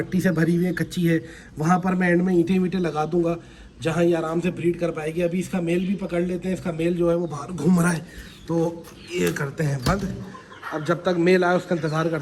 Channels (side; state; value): both; identical; correlation 1.00